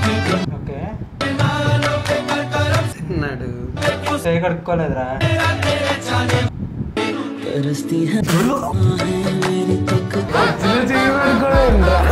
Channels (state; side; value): identical; both; correlation 1.00